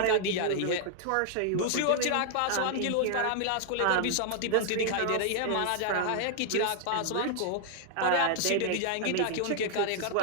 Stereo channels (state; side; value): different; both; correlation 0.00